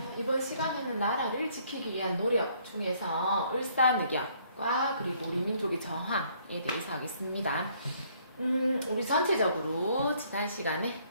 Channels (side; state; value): both; inverted; correlation -0.64